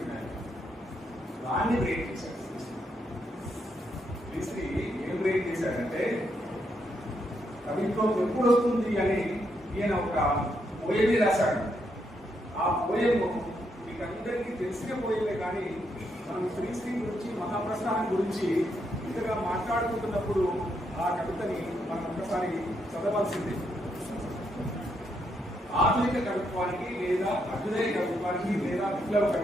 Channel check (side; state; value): both; normal; correlation 0.78